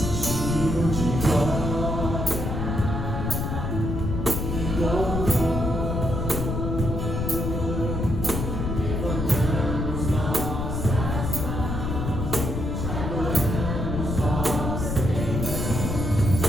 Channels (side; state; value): left; noise; rumble, 2 dB below the sound